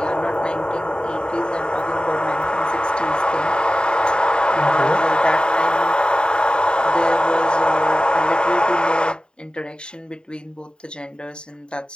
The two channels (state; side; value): late; right; 0.050 ms